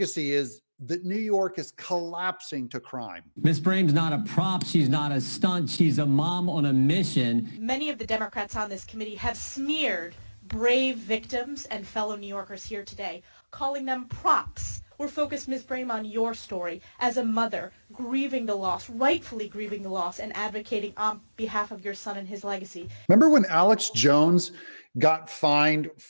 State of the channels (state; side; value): inverted; both; correlation -1.00